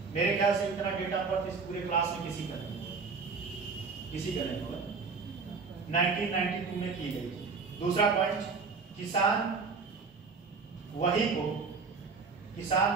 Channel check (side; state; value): left; quieter; 4.8 dB